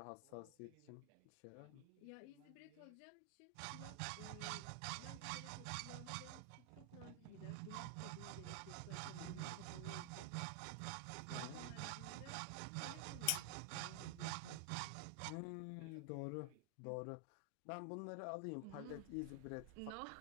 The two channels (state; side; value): different; both; correlation 0.00